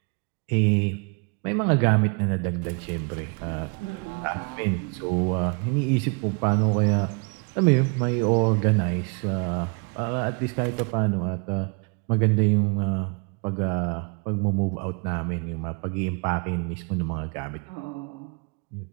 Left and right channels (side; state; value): left; quieter; 34.4 dB